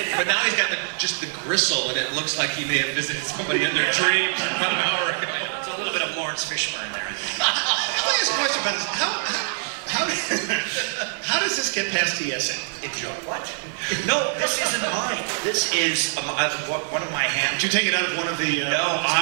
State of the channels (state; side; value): silent; left; digital silence